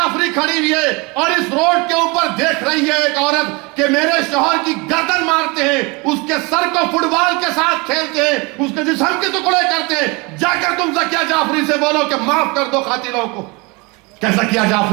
खड़ी हुई है और इस रोड के ऊपर देख रही है एक औरत कि मेरे शौहर की गर्दन मारते हैं, उसके सर को फुटबॉल के साथ खेलते हैं, उसके जिस्म के टुकड़े करते हैं। जाकर तुम जकिया जाफरी से बोलो कि माफ कर दो कातिलों को। क्या जकिया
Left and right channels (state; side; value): quieter; left; 27.3 dB